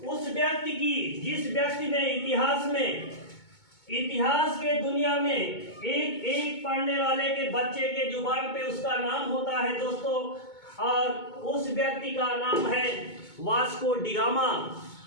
उस व्यक्ति की जिस व्यक्ति ने इतिहास के दुनिया में एक एक पढ़ने वाले के बच्चे के जुबान पे उसका नाम होता है दोस्तों। और उस व्यक्ति का नाम है वास्को डिगामा।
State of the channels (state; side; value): late; right; 2.2 ms